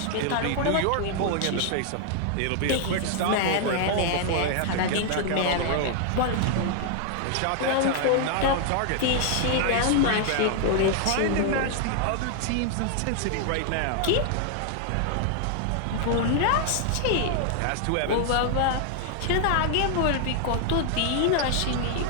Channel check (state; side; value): different; both; correlation 0.00